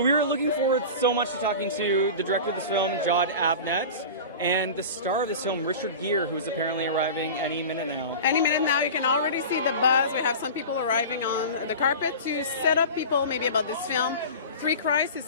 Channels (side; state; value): both; inverted; correlation -0.33